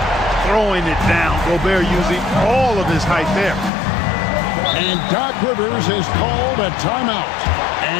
Throwing it down. Gobert using all of his height there. And Doc Rivers has called a timeout.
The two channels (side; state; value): right; drops out; at 3.7 s